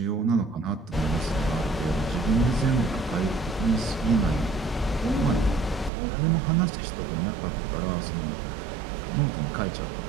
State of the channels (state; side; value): drops out; left; at 5.9 s